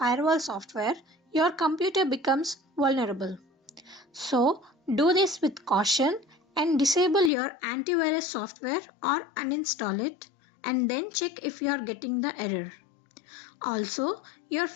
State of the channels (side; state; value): right; drops out; at 7.3 s